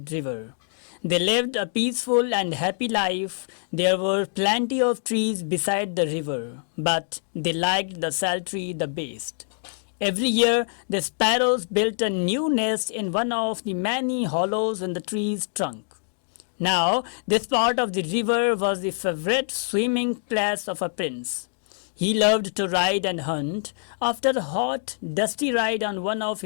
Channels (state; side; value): silent; right; digital silence